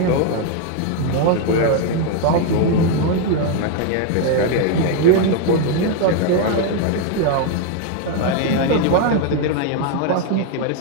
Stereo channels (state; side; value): different; both; correlation 0.01